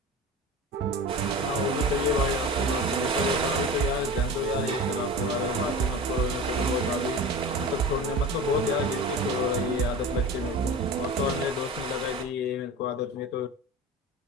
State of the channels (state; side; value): normal; both; correlation 0.32